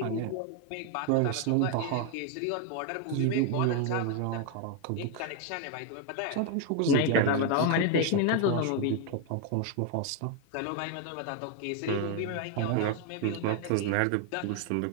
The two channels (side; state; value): both; different; correlation 0.01